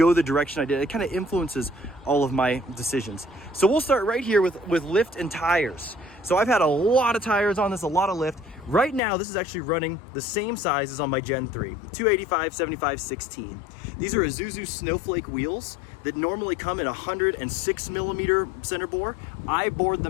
the direction I did. It kind of influences all of my decisions. So we'll start right here with lift and tires. So I've had a lot of tires on this, a lot of lift. Right now, this is actually running the same size as on my Gen 3, 285, 75, 16. These are Isuzu Snowflake wheels that normally come in 106 millimeter center bore. I bored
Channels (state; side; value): drops out; right; at 9.0 s